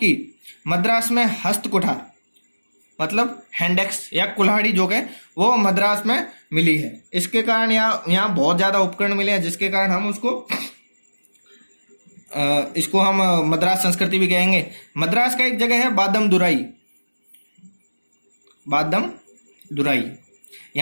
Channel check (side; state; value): both; inverted; correlation -1.00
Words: मद्रास में हस्तकुठार मतलब हैंडेक्स या कुल्हाड़ी जो है वो मद्रास में मिली है। इसके कारण यहाँ बहुत ज्यादा उपकरण मिले हैं, जिसके कारण हम उसको इसको हम मद्रास संस्कृति भी कहेंगे। मद्रास का एक जगह है बादम दुराई, बादम दुराई।